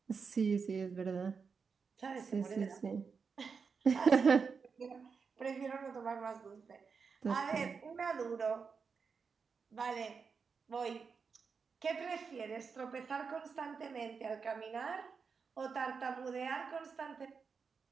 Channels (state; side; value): quieter; left; 5.5 dB